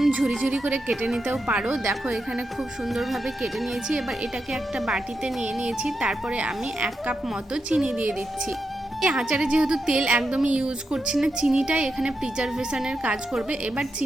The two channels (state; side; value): normal; both; correlation 0.87